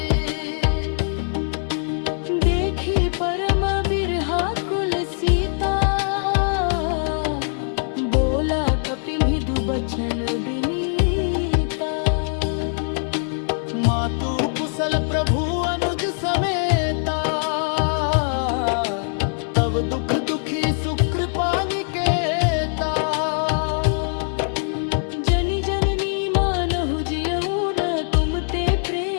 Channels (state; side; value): silent; right; 64 dB below the other